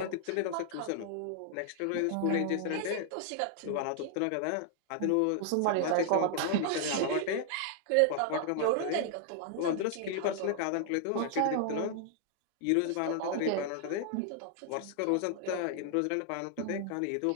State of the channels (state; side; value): different; both; correlation 0.00